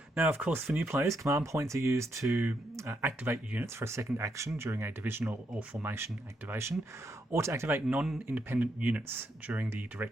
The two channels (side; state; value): both; normal; correlation 0.79